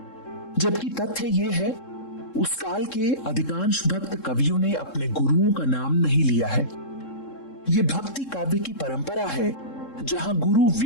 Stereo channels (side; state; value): right; late; 3.7 ms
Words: जबकि तथ्य ये है उस काल के अधिकांश भक्त कवियों ने अपने गुरुओं का नाम नहीं लिया है। ये भक्ति काव्य की परंपरा है जहां गुरु